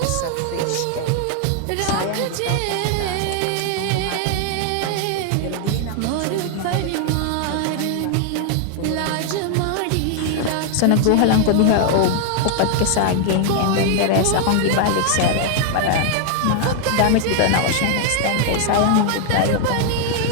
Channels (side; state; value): both; different; correlation 0.00